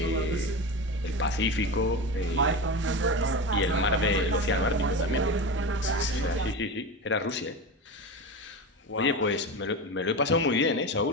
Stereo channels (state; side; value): normal; both; correlation 0.24